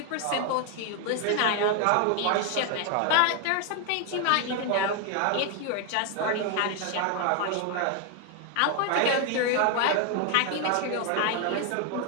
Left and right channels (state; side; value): different; both; correlation 0.01